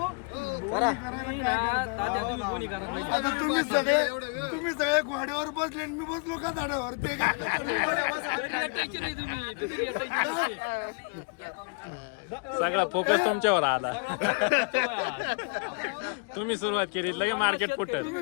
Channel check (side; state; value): right; quieter; 34.6 dB